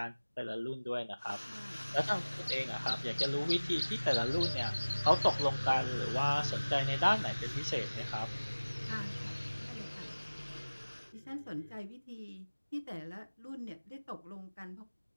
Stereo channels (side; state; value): both; inverted; correlation -1.00